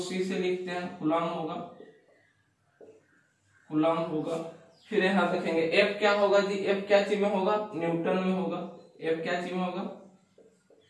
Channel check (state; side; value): identical; both; correlation 1.00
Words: से लिखते हैं, कूलम होगा, कूलम होगा। फिर यहाँ देखेंगे F क्या होगा जी, F क्या चीज में होगा, न्यूटन में होगा। F क्या चीज में होगा,